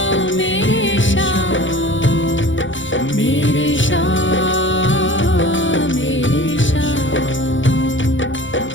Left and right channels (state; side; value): late; right; 0.56 ms